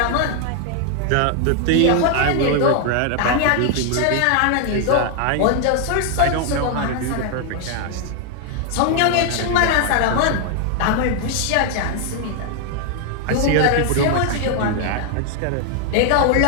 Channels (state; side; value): different; both; correlation 0.00